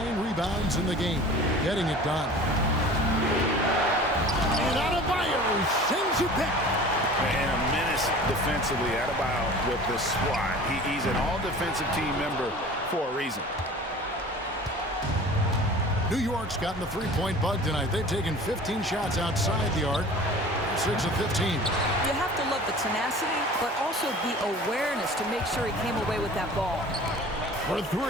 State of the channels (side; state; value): both; normal; correlation 0.42